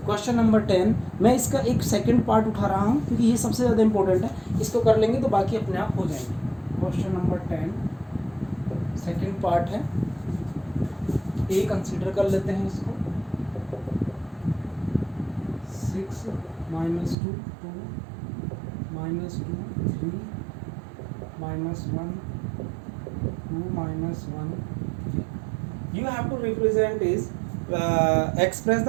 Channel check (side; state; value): left; drops out; at 17.2 s